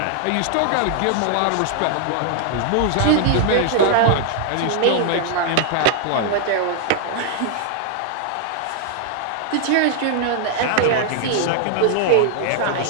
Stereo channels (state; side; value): different; both; correlation 0.00